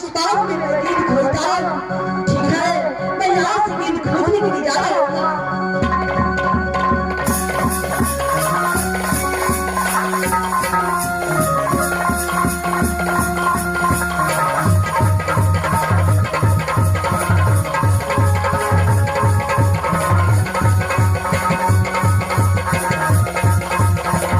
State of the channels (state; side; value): identical; both; correlation 1.00